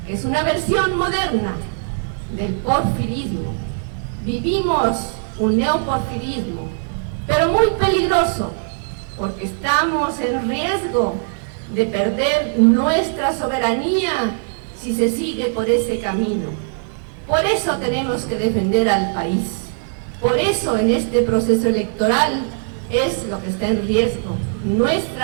que es una versión moderna del porfirismo. Vivimos un neoporfirismo, pero muy peligroso, porque estamos en riesgo de perder nuestra soberanía si se sigue por ese camino. Por eso tenemos que defender al país. Por eso en este proceso electoral es lo que está en riesgo,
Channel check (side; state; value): left; silent; digital silence